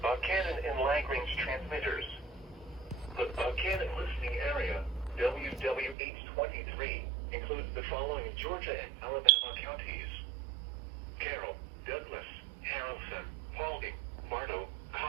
and Lagrange transmitters. The Buchanan listening area, WWH23, includes the following Georgia and Alabama counties: Carroll, Douglas, Harrison, Paulding, Bartow,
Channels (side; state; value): left; drops out; at 6.0 s